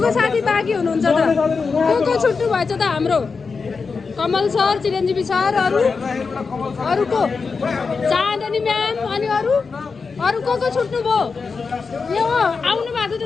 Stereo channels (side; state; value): right; quieter; 4.9 dB